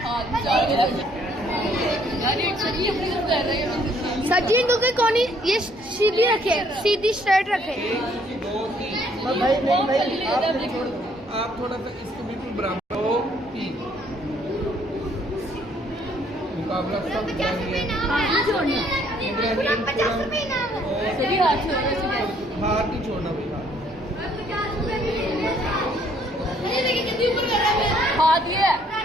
सर जी इनको कोनी ये सीधी रखे, सीधी स्ट्रेट रखे। 1 2 3 भाई नहीं भाई आप छोड़ दो। आप थोड़ा सा इसको बिल्कुल बराबर 2 3 मुकाबला सब जारी है। इब्राहिम हाथ नहीं छोड़ना भाई, हाथ ये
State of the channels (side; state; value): both; normal; correlation 0.65